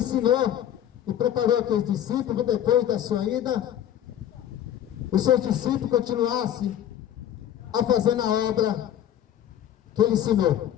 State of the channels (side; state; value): right; quieter; 10.8 dB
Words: e preparou aqueles discípulos, depois da sua ida, os seus discípulos continuassem a fazer na obra que ele ensinou.